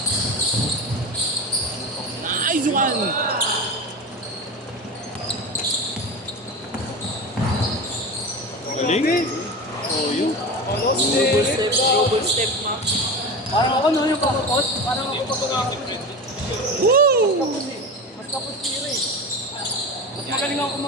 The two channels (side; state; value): both; normal; correlation 0.26